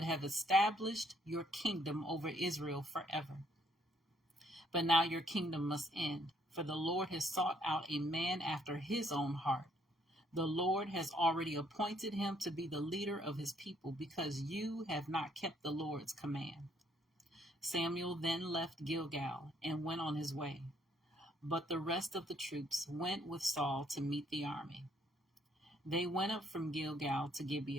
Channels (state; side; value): normal; both; correlation 0.67